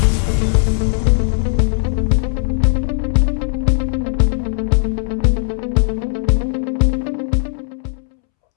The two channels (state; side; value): silent; right; 68 dB below the other